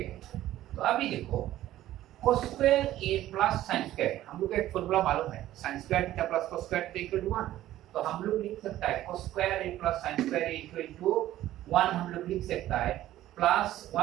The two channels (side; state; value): left; quieter; 14.0 dB